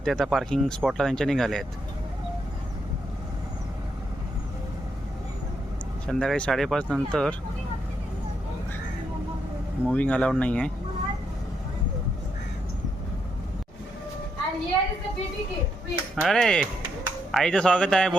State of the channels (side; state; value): both; normal; correlation 0.79